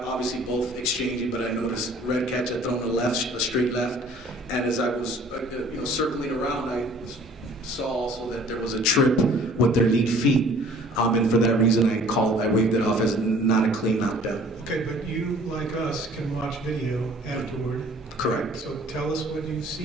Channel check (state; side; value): normal; both; correlation 0.52